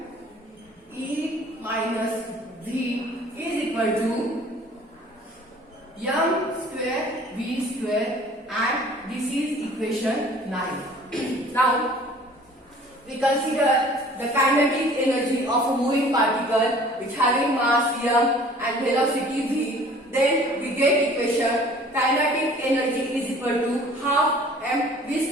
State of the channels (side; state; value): both; normal; correlation 0.50